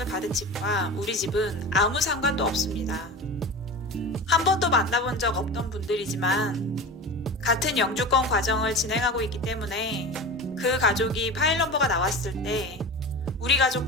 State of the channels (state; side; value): normal; both; correlation 0.31